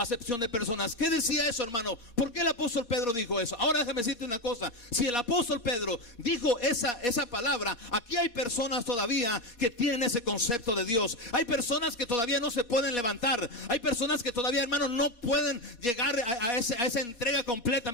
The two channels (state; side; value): late; right; 4.2 ms